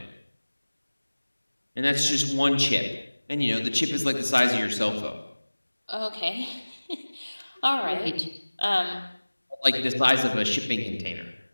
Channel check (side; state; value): both; inverted; correlation -1.00